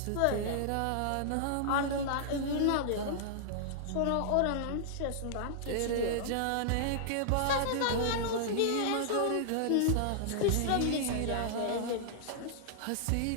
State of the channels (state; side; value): different; both; correlation -0.01